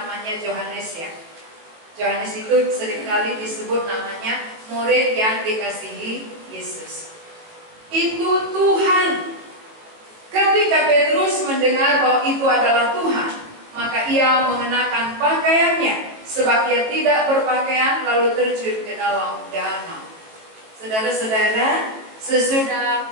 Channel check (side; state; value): left; late; 19 ms